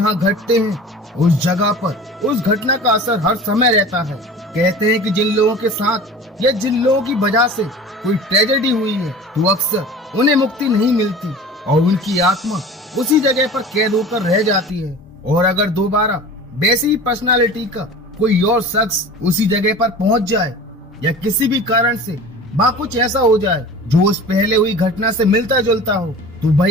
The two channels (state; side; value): normal; both; correlation 0.38